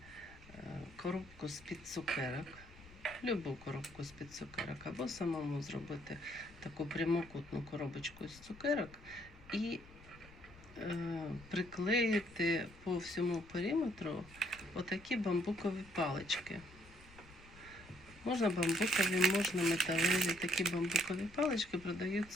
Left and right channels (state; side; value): noise; left; rumble, 21 dB below the sound